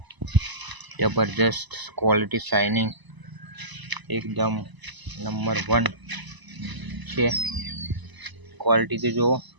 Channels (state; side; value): late; left; 1.0 ms